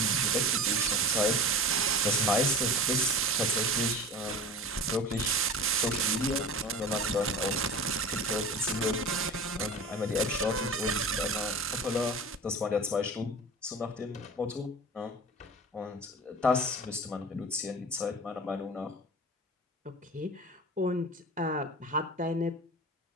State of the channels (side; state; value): both; normal; correlation 0.35